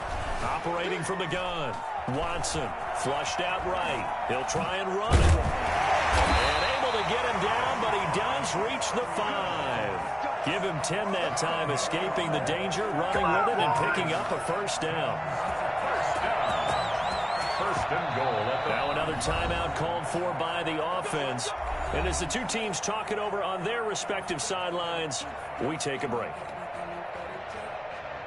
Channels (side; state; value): both; identical; correlation 1.00